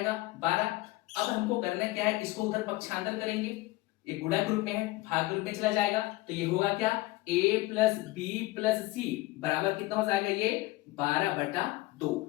12। अब हमको करना क्या है? इसको उधर पक्षांतर करेंगे। ये गुणा के रूप में है, भाग के रूप में चला जाएगा। तो ये होगा क्या? a प्लस बी प्लस सी बराबर कितना हो जाएगा? ये 12/2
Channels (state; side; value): quieter; right; 19.5 dB